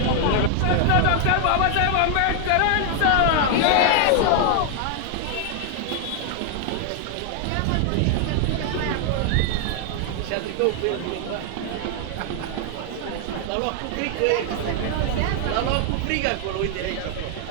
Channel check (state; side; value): different; both; correlation 0.00